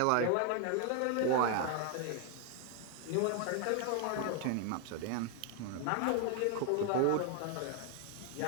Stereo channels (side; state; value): both; different; correlation 0.00